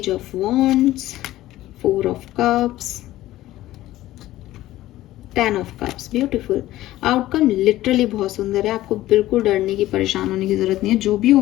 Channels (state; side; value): quieter; right; 15.4 dB